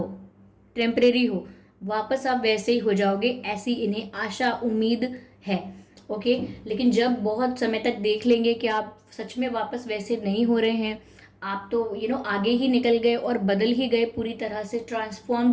टेम्परेरी हो, वापस आप वैसे ही हो जाओगे, ऐसी इन्हें आशा उम्मीद है। ओके, लेकिन जब बहुत समय तक देख लेंगे कि आप सच में वापस वैसे नहीं हो रहे हैं, आप तो आगे ही निकल गए और बदल ही गए, पूरी तरह से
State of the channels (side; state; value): both; identical; correlation 1.00